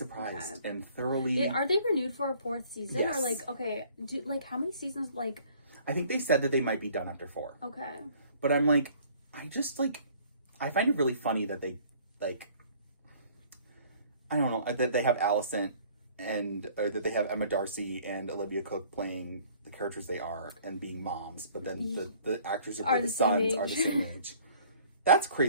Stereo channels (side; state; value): both; inverted; correlation -0.55